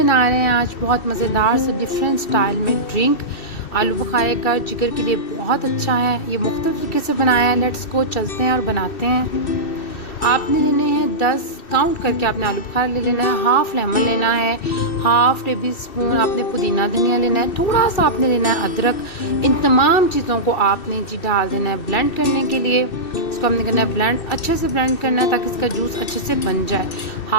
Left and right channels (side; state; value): right; late; 2.6 ms